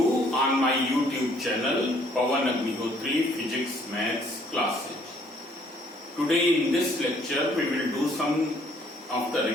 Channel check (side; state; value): both; normal; correlation 0.62